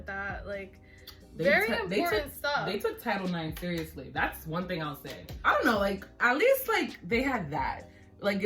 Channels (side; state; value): both; identical; correlation 1.00